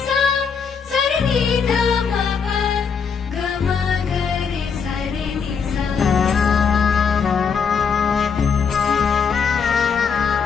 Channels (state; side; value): quieter; right; 6.2 dB